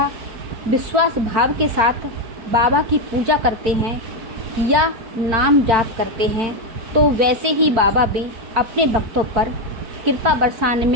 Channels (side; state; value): left; late; 4.5 ms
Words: विश्वास भाव के साथ बाबा की पूजा करते हैं या नाम जाप करते हैं तो वैसे ही बाबा भी अपने भक्तों पर कृपा बरसाने